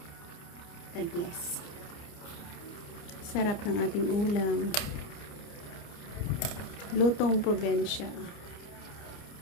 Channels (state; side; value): late; right; 29 ms